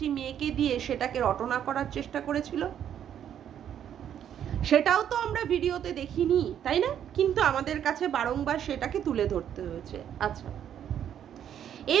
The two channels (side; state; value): left; quieter; 9.7 dB